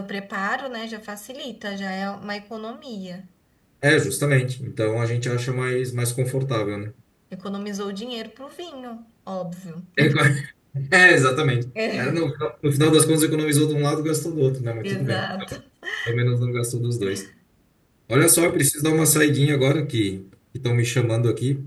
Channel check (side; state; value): both; identical; correlation 1.00